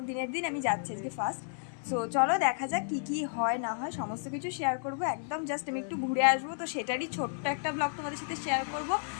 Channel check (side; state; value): right; silent; digital silence